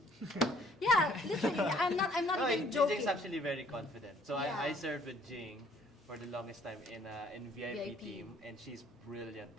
Yeah, literally. I'm not No, even joking. Jing's actually very confident. So Yeah. I served with Jing for the longest time in VIP VIP. team, and she's brilliant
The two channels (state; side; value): normal; both; correlation 0.60